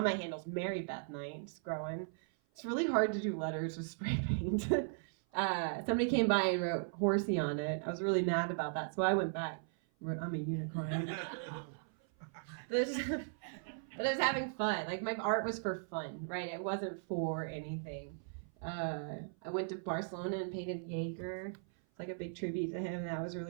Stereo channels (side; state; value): left; silent; 53 dB below the other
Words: my handle's Mary Beth Knight. It's growing. It's really hard to do letters with spray paint. Somebody came by and wrote horsey on it. I was really mad about that, so I went back and wrote, I'm a unicorn. But I was having fun. Like my art was for fun, right? It wasn't for anything. I went to Barcelona and painted Jaeger. It's like a big tribute to him. That was